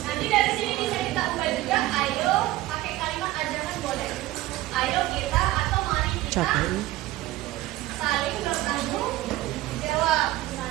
Nanti dari sini bisa kita ubah juga. Ayo pakai kalimat ajakan boleh. Ayo kita atau mari kita Capek. saling bertanggung jawab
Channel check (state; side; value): quieter; left; 16.8 dB